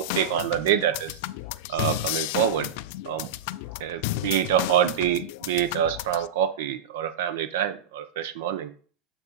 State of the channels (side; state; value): left; quieter; 5.4 dB